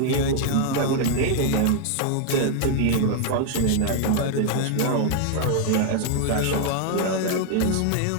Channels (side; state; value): both; different; correlation 0.00